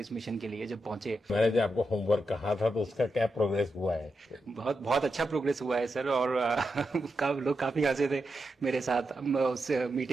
मिशन के लिए जब पहुंचे। मैंने जो आपको होमवर्क कहा था तो उसका क्या प्रोग्रेस हुआ है? बहुत बहुत अच्छा प्रोग्रेस हुआ है सर, और लोग काफी हंसे थे मेरे साथ। उस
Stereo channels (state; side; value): normal; both; correlation 0.87